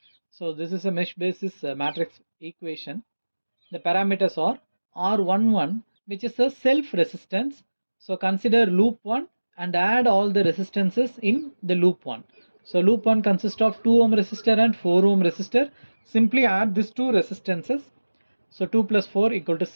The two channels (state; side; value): inverted; both; correlation -1.00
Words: So this is a mesh basis matrix equation. The parameters are R11, which is a self resistance. So consider loop 1 and add all the resistances in the loop 1. So loop 1 consists of 2 ohm resistor and 4 ohm resistor. Simply add these two resistances. So 2 plus 4 equal to